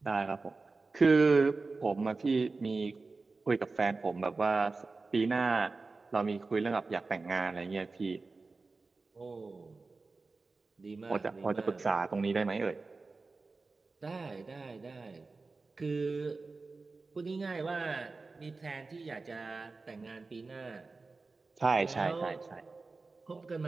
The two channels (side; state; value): left; quieter; 3.9 dB